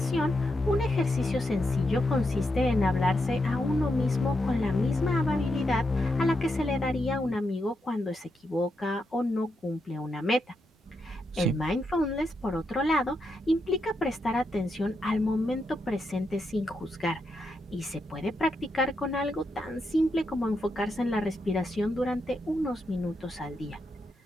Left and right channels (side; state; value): both; normal; correlation 0.84